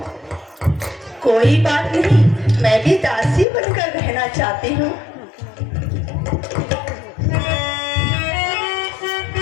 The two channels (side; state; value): right; drops out; at 3.5 s